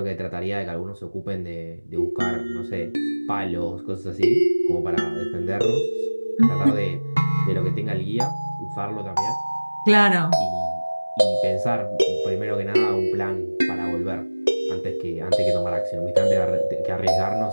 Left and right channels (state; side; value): inverted; both; correlation -1.00